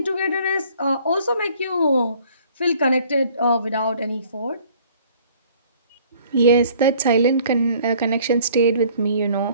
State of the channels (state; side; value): inverted; both; correlation -0.55